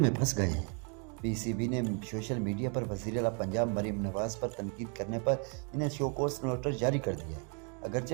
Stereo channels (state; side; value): quieter; left; 38.5 dB